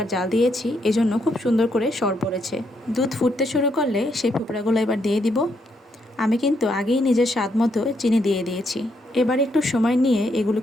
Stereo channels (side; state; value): both; normal; correlation 0.76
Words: জাল দিয়েছি, এজন্য খুব সুন্দর করে সর পড়েছে। দুধ ফুটতে শুরু করলে সেই ফোপড়াগুলো এবার দিয়ে দিব। আমি কিন্তু আগেই নিজের স্বাদ মতো চিনি দিয়ে দিয়েছি। এবার একটু সময় নিয়ে